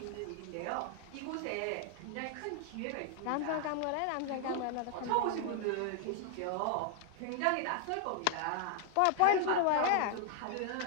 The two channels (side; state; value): both; different; correlation 0.00